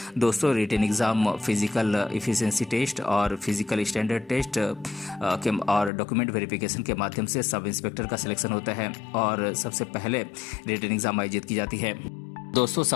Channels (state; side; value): drops out; right; at 5.9 s